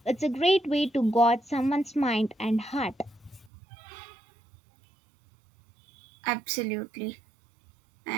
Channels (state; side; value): drops out; left; at 3.5 s